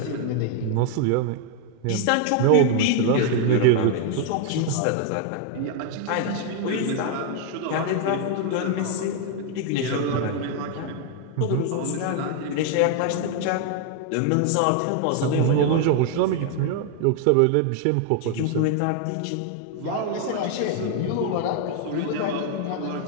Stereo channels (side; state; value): both; different; correlation 0.00